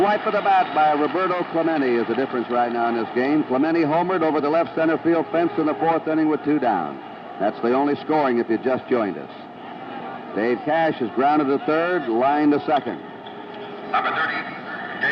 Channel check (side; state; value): both; identical; correlation 1.00